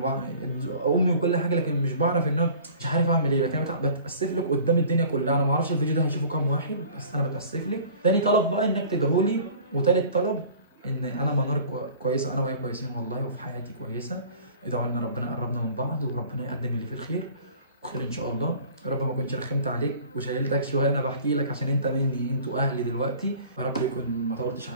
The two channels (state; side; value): inverted; both; correlation -0.46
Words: امي وكل حاجه، لكن مش بعرف ان انا مش عارف اعمل ايه. لكن انا بتاسف لك قدام الدنيا كلها. انا ما اعرفش الفيديو ده هيشوفه كام واحد، بس انا بتاسف لك. تاني طلب بقى انك تدعولي، وتالت طلب ان انا منار كويسه، انا وهي كويسين والله، وفي حياتي كويسه. ادعوا لنا ربنا يقربنا من بعض، وربنا يقدم اللي فيه الخير خير ان شاء الله. يا رب ما كنتش رخمت عليك وشايلتك شويه، انا بحكي لك عشان انت مني، انتوا اهلي دلوقتي. يا رب يكون ما طولتش